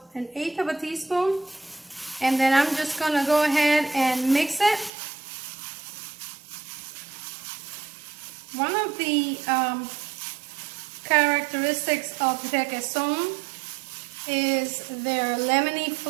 1/8 of a teaspoon, and then I'm just going to go ahead and mix it. One of the characteristics of Requeson is their lemony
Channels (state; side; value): drops out; left; at 4.9 s